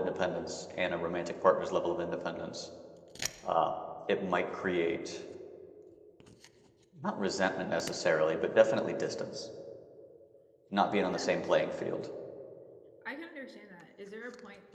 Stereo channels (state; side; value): identical; both; correlation 1.00